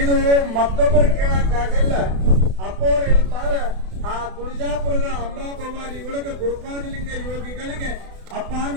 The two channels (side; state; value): left; late; 32 ms